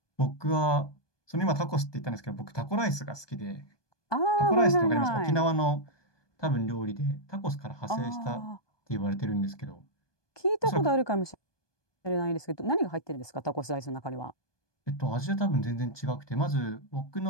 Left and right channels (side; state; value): right; late; 1.2 ms